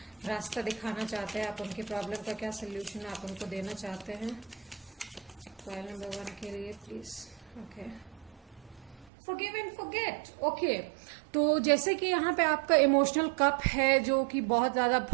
रास्ता दिखाना चाहते हैं आप, उनकी प्रॉब्लम का क्या सोल्यूशन आप उनको देना चाहते हैं पाइल नंबर 1 के लिए, please. Okay, Forgive and forget. Okay, तो जैसे कि यहाँ पे आपका इमोशनल कप है जो कि बहुत ज्यादा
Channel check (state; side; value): drops out; left; at 9.1 s